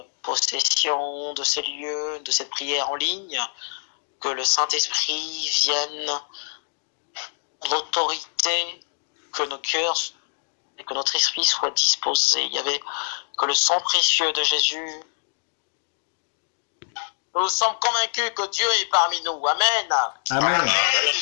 possession de ces lieux, de cette prière en ligne, que le Saint-Esprit vienne l'autorité, que nos cœurs et que notre esprit soit disposé. Il y avait que le sang précieux de Jésus. Nous sommes convaincus que Dieu est parmi nous. Amen. Amen.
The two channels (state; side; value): silent; right; digital silence